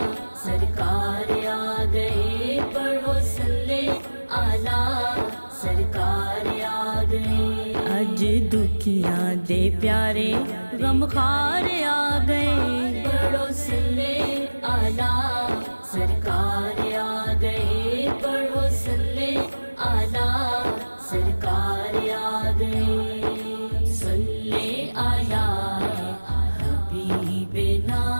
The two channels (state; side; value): inverted; both; correlation -1.00